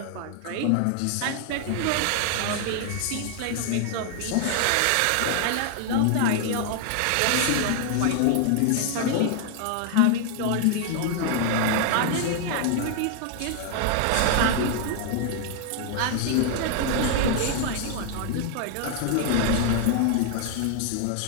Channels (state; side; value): different; both; correlation 0.00